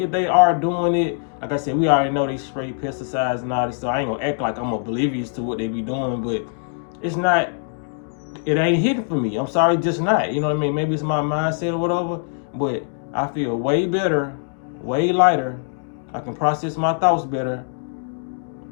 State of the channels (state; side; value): silent; right; digital silence